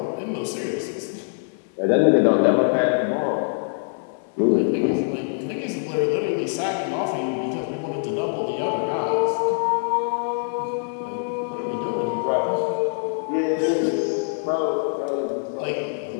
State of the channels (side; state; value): right; silent; digital silence